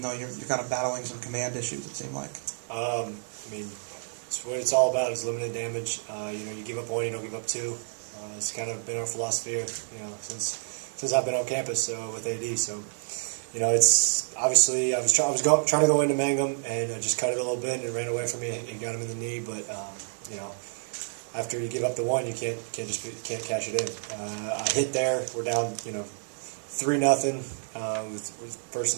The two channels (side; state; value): left; silent; digital silence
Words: though you're kind of battling some command issues, it seemed like? It's what it's all about is limited damage. You give up one, you don't give up two. It's kind of been our philosophy, since I've been on campus with AD. So, it's obviously I was trying to go into Mangum, and I just cut it a little bit, and it ran away from me and got him in the knee. But after you give up the one, you can't cash it in. I hit there. We're down 3-0 with first